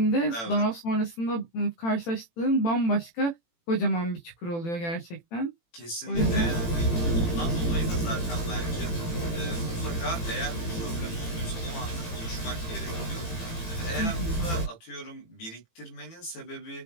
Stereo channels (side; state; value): right; late; 18 ms